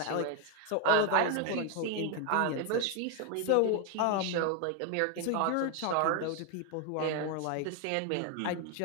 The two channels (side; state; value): both; different; correlation 0.01